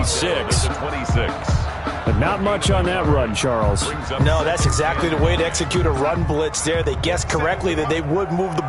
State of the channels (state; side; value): identical; both; correlation 1.00